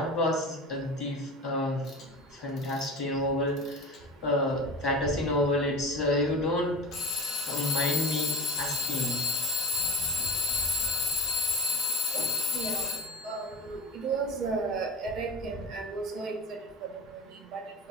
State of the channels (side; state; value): both; normal; correlation 0.32